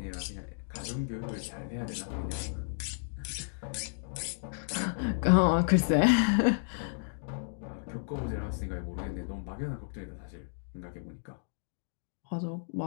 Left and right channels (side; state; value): right; silent; digital silence